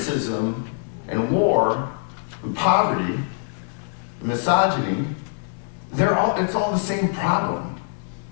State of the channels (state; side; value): silent; right; 63 dB below the other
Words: and war and poverty, misogyny, it's all the same problem.